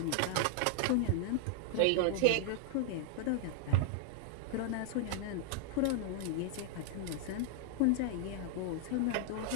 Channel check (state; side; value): different; both; correlation -0.01